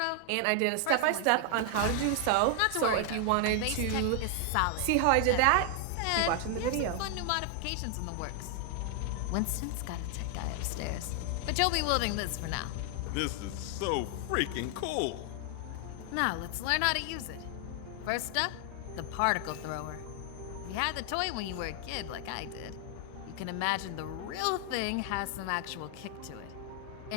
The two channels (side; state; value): both; different; correlation 0.00